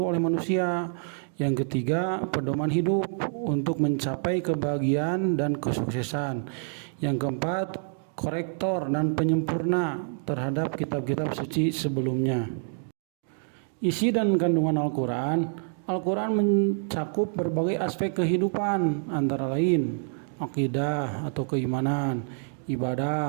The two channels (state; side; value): silent; left; 60 dB below the other